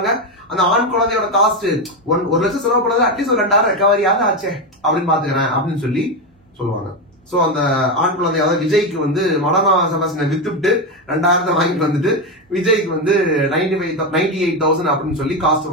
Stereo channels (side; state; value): both; normal; correlation 0.11